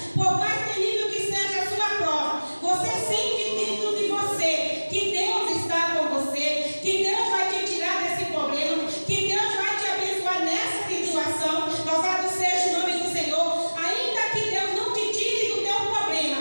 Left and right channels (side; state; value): both; inverted; correlation -1.00